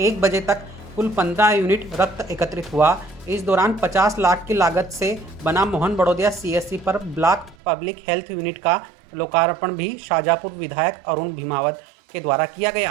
बजे तक कुल 15 यूनिट रक्त एकत्रित हुआ। इस दौरान 50 लाख की लागत से बना मोहन बड़ोदिया सीएससी पर ब्लॉक पब्लिक हेल्थ यूनिट का लोकार्पण भी शाजापुर विधायक अरुण भीमावत के द्वारा किया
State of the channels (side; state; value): left; drops out; at 7.6 s